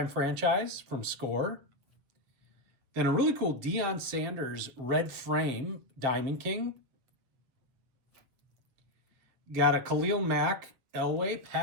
Franchise from Score. Then a really cool Deion Sanders red frame Diamond King. Got a Khalil Mack, Elway,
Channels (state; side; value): late; left; 7.6 ms